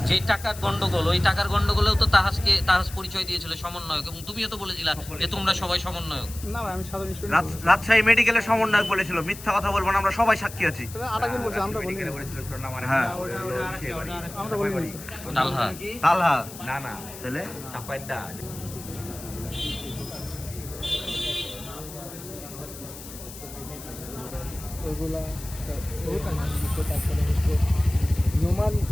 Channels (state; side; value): noise; left; hiss, 14 dB below the sound